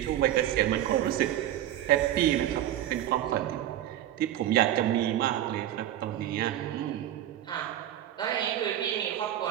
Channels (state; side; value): quieter; left; 12.2 dB